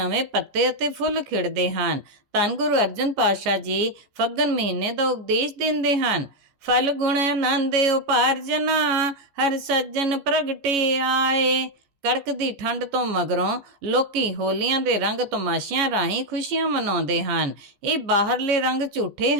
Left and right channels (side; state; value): left; late; 14 ms